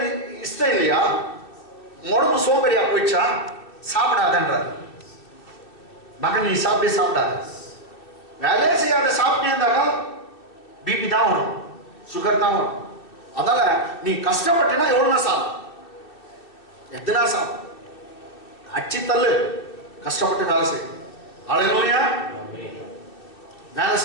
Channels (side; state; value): right; late; 2.7 ms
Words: நீ இஷ்டம் இல்லையா, உடம்பு சோம்பேறியா போயிடுச்சா, சாப்பிடாதன்றார். மகன் நீ சாப்பிடாத, வேலையே செய்யாத சாப்பிட்டே இருந்தாக்கா பிபி தான் வரும், சுகர் தான் வரும். அதனால நீ கஷ்டப்பட்டினா எவ்வளவு சாப்பிடும், எத்தனா சாப்பிடும், அச்சி தள்ளு, கஷ்டப்பட்டு வேலை செய்யும். அல்லேலூயா. வேலை